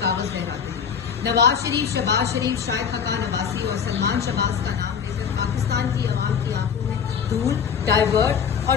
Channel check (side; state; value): right; quieter; 7.1 dB